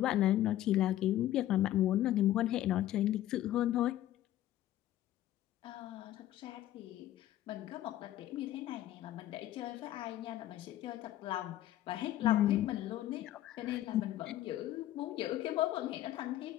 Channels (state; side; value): quieter; right; 13.5 dB